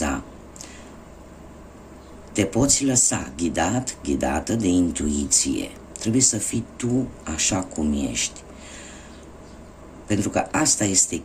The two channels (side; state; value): both; identical; correlation 1.00